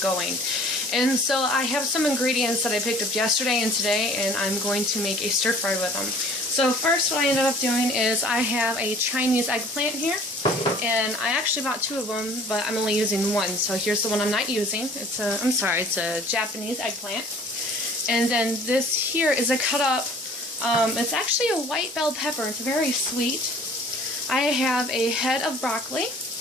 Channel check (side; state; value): both; normal; correlation 0.51